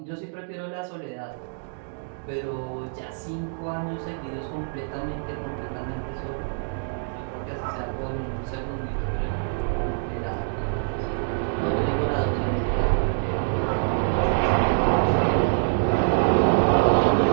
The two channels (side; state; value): left; silent; digital silence